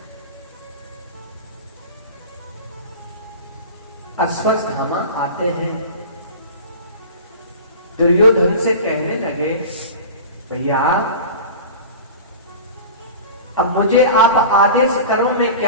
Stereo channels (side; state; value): both; inverted; correlation -0.35